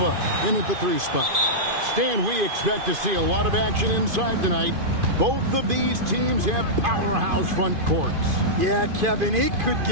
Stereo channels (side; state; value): left; late; 2.5 ms